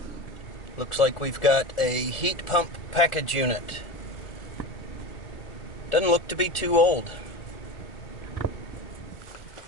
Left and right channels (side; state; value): right; late; 1.4 ms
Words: Looks like we've got a heat pump package unit. Doesn't look to be too old.